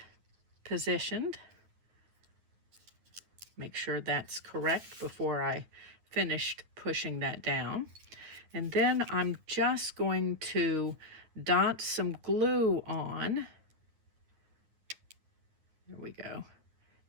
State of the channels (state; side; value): late; left; 9.5 ms